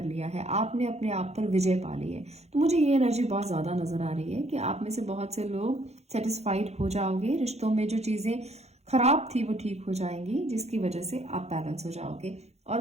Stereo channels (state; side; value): late; left; 0.31 ms